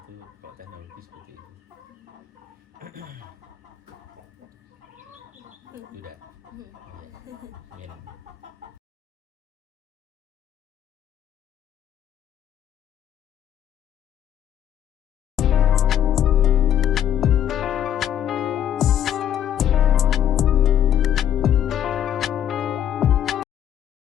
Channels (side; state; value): right; quieter; 10.3 dB